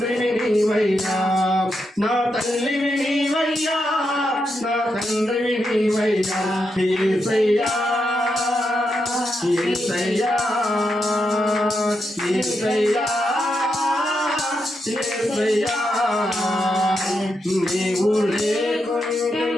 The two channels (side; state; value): both; normal; correlation 0.84